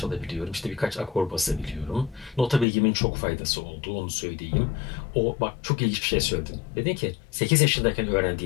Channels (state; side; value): drops out; right; at 2.7 s